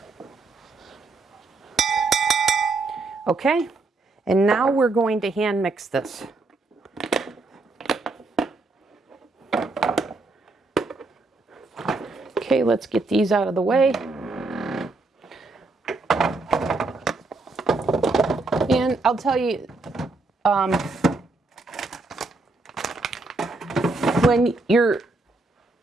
Okay, and now we're going to hand mix this. Okay, let's get these out of the way. And I'll tell you, when you're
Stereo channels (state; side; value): quieter; left; 3.4 dB